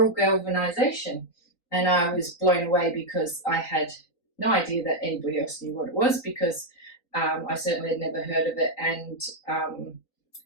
galvanization. And I was blown away because I had no idea that anybody else knew what it was, because I certainly had never heard of it. And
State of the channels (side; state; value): right; late; 3.9 ms